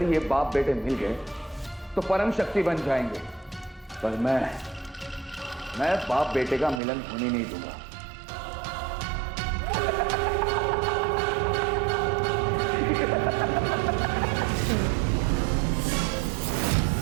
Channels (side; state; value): left; drops out; at 6.8 s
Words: ये बाप बेटे मिल गए तो परम शक्ति बन जाएंगे, पर मैं बाप बेटे का मिलन होने नहीं दूंगा।